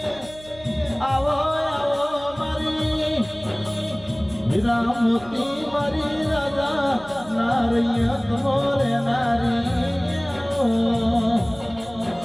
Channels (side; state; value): right; noise; hum, 21 dB below the sound